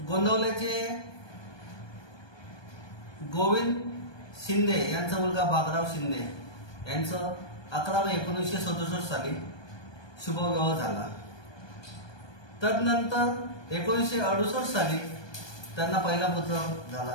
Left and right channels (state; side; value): late; right; 1.2 ms